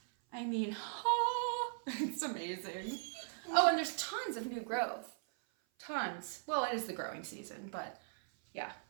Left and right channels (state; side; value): silent; left; 52 dB below the other